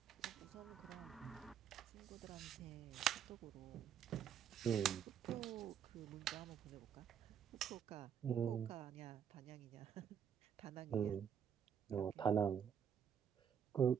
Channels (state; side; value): quieter; left; 8.5 dB